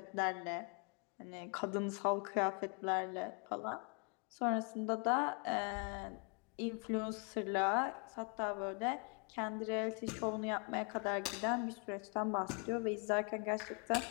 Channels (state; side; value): quieter; right; 37.1 dB